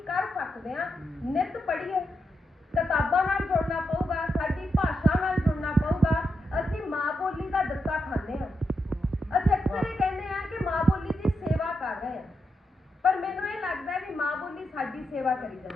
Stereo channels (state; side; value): normal; both; correlation 0.85